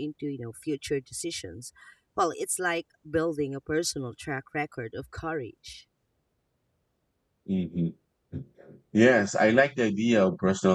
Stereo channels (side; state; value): both; identical; correlation 1.00